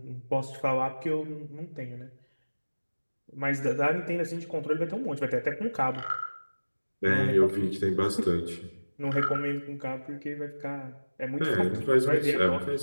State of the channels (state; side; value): inverted; both; correlation -1.00